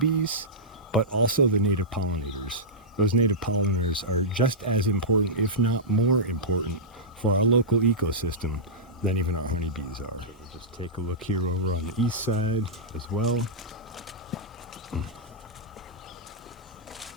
but also the native pollinators. Those native pollinators are just as important, if not more important, for our local ecosystem than even our honeybees are. We'll just take a look here over on the east side as well.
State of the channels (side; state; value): both; normal; correlation -0.13